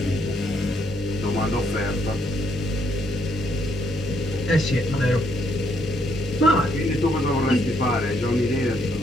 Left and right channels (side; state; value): both; normal; correlation 0.73